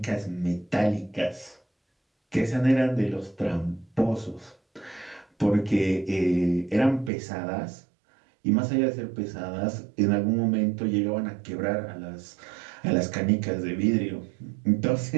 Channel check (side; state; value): left; drops out; at 7.1 s